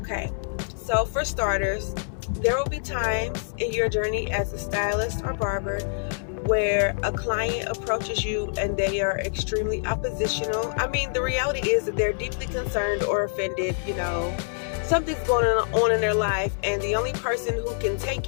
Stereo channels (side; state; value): right; silent; 60 dB below the other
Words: so for starters, there will be times in your journey as a stylist or barber where a client approaches you and they are extremely oppositional. I mean, the reality is that they're deeply concerned or offended, something's going on in their life, and the only person who can take